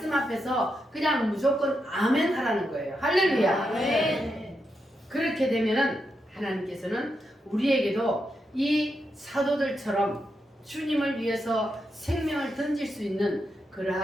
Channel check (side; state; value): both; normal; correlation 0.84